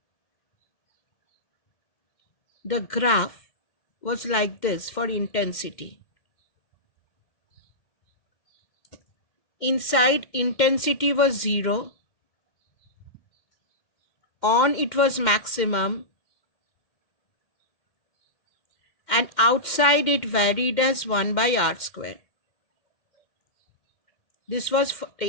The graph was like this for intensity. Inside, intensity was 0. On, it was maximum. And outside, it varied as 1 by r square. This was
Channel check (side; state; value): right; late; 2.1 ms